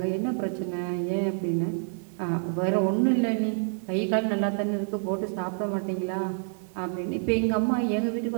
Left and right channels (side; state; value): left; silent; 60 dB below the other